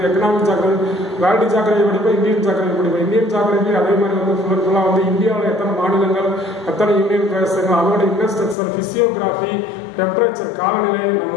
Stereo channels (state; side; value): drops out; right; at 8.6 s